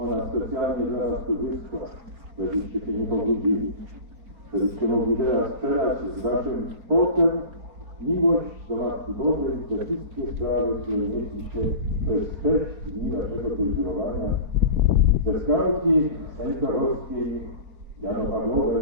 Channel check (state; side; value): late; left; 4.4 ms